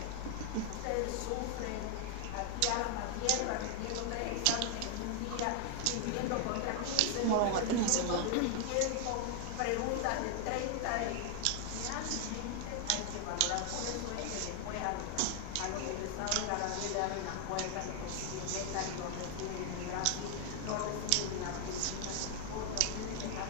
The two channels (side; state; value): both; different; correlation 0.00